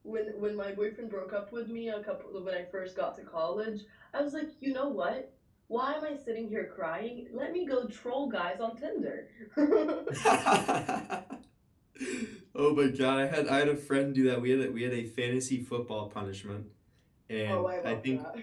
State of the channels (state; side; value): identical; both; correlation 1.00